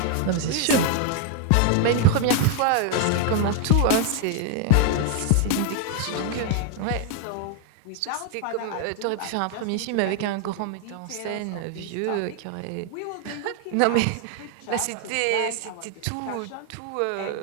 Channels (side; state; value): both; different; correlation 0.00